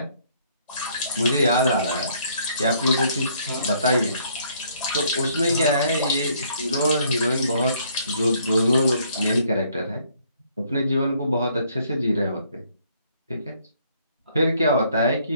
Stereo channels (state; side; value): inverted; both; correlation -0.65